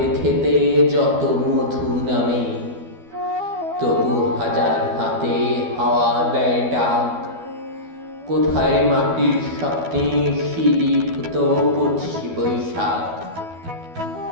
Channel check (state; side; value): late; left; 12 ms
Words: খেতে যত মধু নামে। তবু হাজার হাতে হাওয়া দেয় ডাক, কোথায় মাটির স্বপ্নে শিলীভূত 25 বৈশাখ।